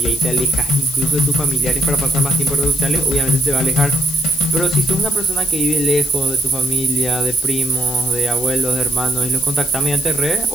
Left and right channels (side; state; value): left; noise; hiss, 11 dB below the sound